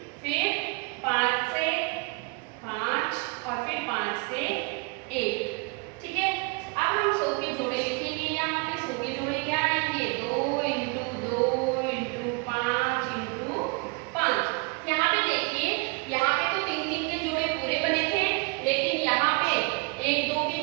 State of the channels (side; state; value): left; quieter; 30.2 dB